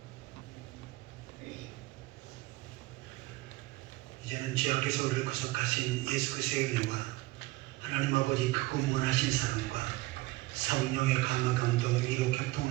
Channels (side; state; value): left; quieter; 19.8 dB